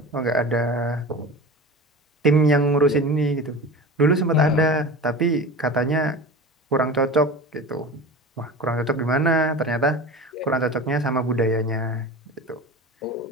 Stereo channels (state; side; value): normal; both; correlation 0.33